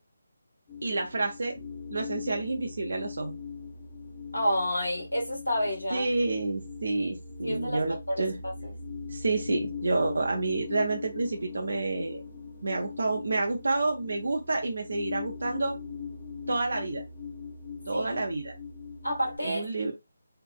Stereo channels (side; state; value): both; inverted; correlation -0.90